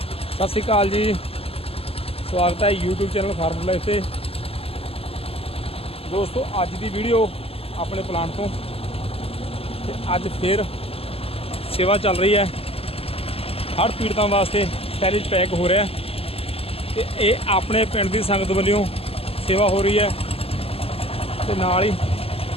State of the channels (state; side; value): late; right; 0.28 ms